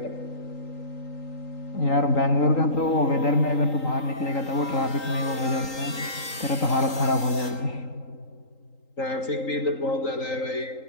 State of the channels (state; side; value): late; right; 3.8 ms